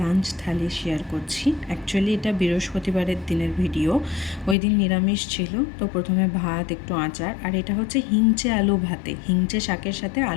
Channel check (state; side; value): drops out; right; at 4.5 s